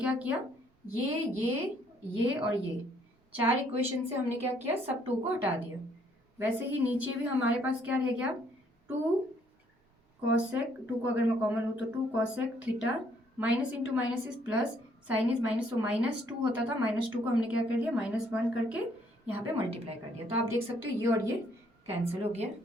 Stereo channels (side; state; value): both; normal; correlation 0.66